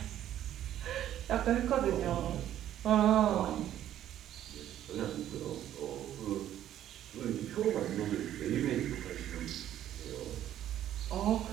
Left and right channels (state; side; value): quieter; left; 11.7 dB